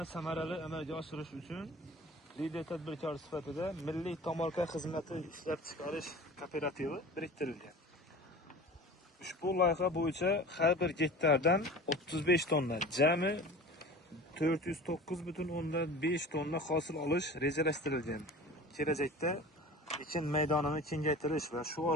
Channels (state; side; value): normal; both; correlation 0.39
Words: samarali amalga oshirish uchun lider tadbirkor sifatida Milliy tomorqa xizmati ishlab chiqarish kooperativi biriktirilgan. Ushbu loyiha bo'yicha har bir gektardan 35 tonna, jami 409,5 tonna hosil olish rejalashtirilgan. Kelajakda ekin maydonini kengaytirish va shu